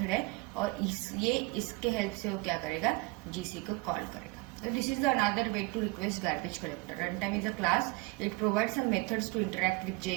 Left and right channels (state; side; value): quieter; left; 24.9 dB